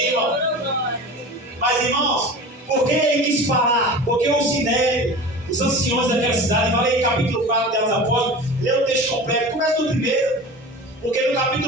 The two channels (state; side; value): normal; both; correlation 0.35